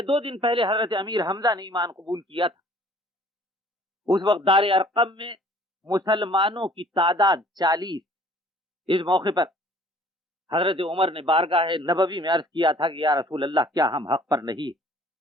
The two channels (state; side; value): normal; both; correlation 0.54